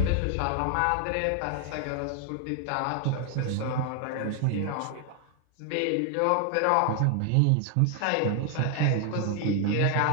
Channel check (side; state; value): both; different; correlation 0.00